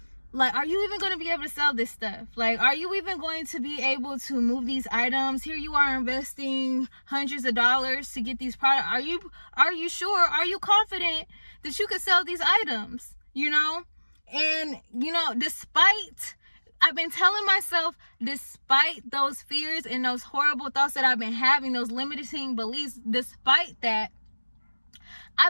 are you even going to be able to sell this stuff? Like, are you even going to be able to move these items? Here you are investing hundreds of dollars to get these products. Are you sure? Are you confident that you could sell these items? You know? And, you know, I've been telling myself, despite those fears and those horrible thoughts that I've been having, those limiting beliefs, despite that,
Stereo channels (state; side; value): inverted; both; correlation -1.00